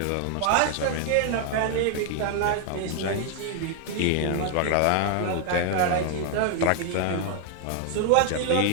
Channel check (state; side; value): different; both; correlation 0.00